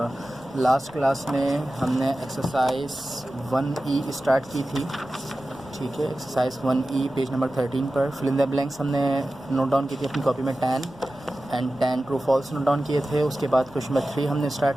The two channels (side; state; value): left; noise; rumble, 24 dB below the sound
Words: लास्ट क्लास में हमने एक्सरसाइज 1E स्टार्ट की थी। ठीक है, एक्सरसाइज 1E पेज नंबर 13 पर फिल इन द ब्लैंक्स हमने नोट डाउन की थी अपनी कॉपी में 10 ट्रू फॉल्स नोट डाउन किए थे। उसके बाद क्वेश्चन नंबर 3 हमने